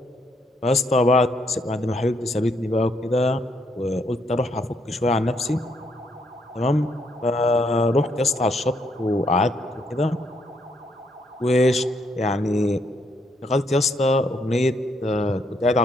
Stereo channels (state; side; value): normal; both; correlation 0.73